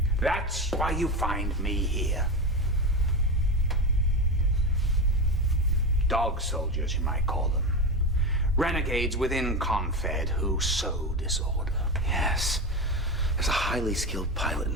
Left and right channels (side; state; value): both; normal; correlation 0.19